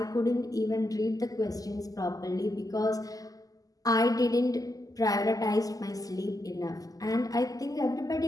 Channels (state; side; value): late; right; 0.17 ms